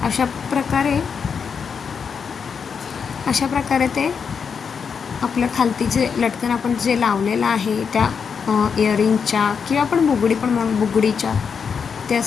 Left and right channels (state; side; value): quieter; right; 6.3 dB